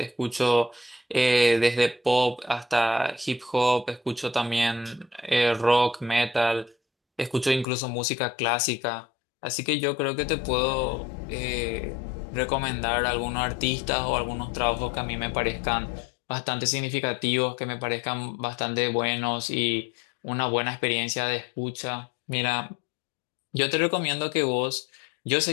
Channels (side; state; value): right; drops out; at 7.7 s